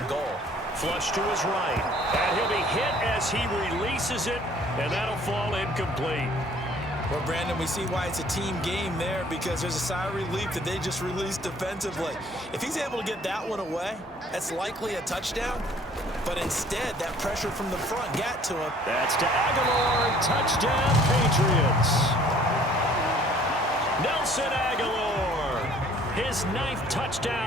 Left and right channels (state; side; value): normal; both; correlation 0.56